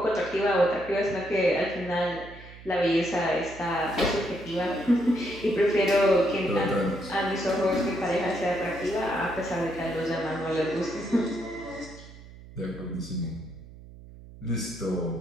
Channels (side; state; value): right; noise; hum, 18 dB below the sound